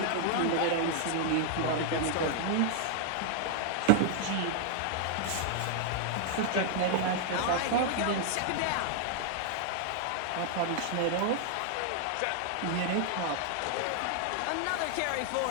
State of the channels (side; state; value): both; different; correlation 0.00